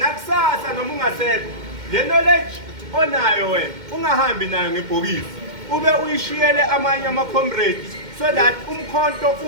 noma ungasekho le knowledge onayo wena ungahambi nayo ngebhokisi, ube uyishiyele amanye ama-comrades so that umkhonto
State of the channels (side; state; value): left; late; 2.1 ms